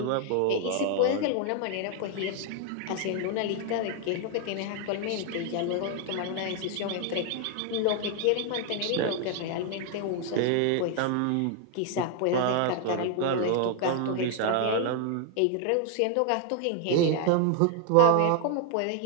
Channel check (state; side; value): different; both; correlation 0.00